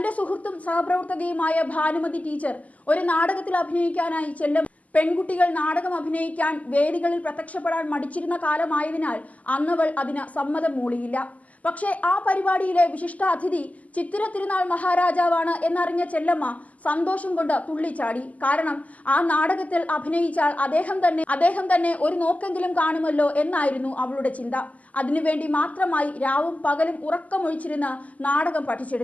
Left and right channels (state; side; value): late; right; 0.073 ms